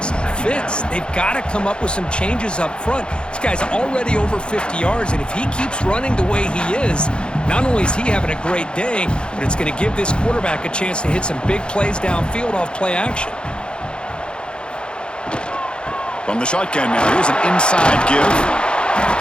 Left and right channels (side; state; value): right; late; 0.053 ms